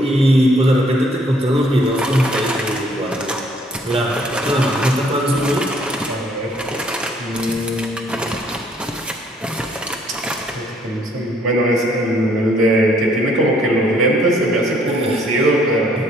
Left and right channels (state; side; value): normal; both; correlation 0.64